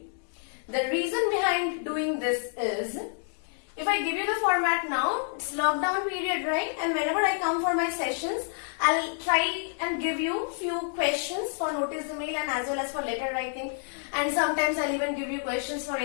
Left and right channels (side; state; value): right; silent; 59 dB below the other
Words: The reason behind doing this is, if I give you the format now, it's lockdown period, right? And whenever I come for my sessions, I'll try and give you few questions for notice email and as well as for letter writing. And sometimes I'll even give you questions for